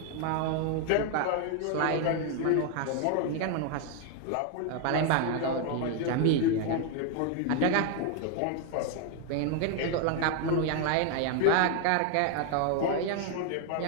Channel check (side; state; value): both; different; correlation 0.00